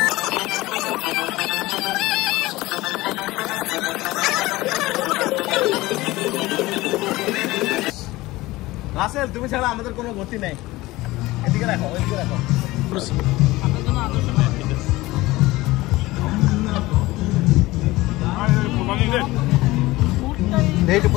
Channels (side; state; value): right; quieter; 19.3 dB